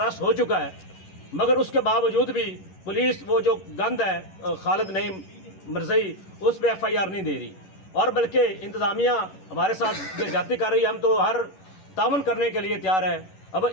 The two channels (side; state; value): right; late; 11 ms